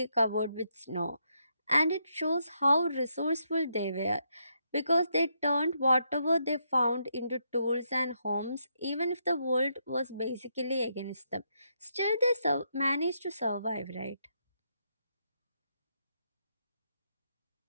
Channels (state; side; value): inverted; both; correlation -0.78